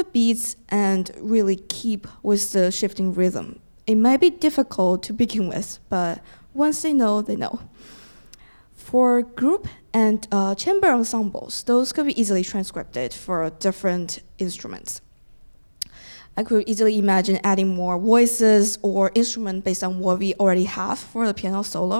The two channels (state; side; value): inverted; both; correlation -1.00